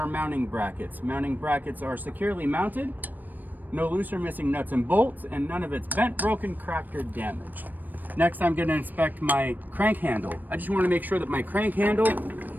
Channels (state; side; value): late; left; 0.088 ms